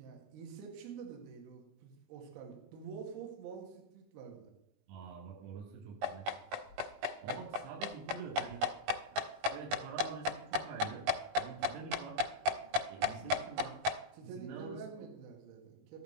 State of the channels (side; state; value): left; late; 20 ms